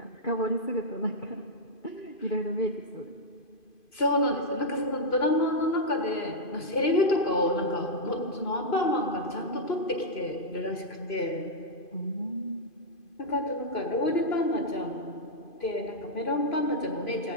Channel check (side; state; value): right; late; 2.5 ms